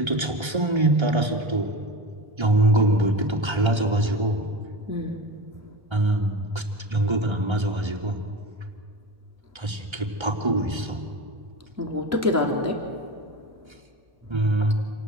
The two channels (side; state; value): left; late; 1.3 ms